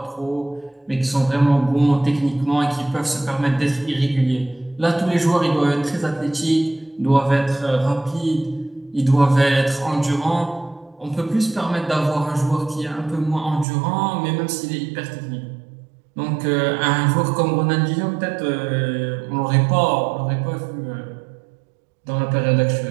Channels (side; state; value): left; drops out; at 13.7 s